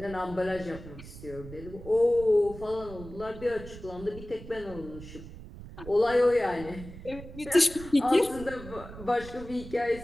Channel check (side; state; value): right; noise; rumble, 14 dB below the sound